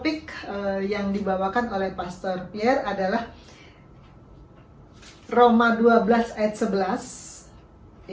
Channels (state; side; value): identical; both; correlation 1.00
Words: yang dibawakan oleh Pastor Pierre adalah Roma 12 ayat 11.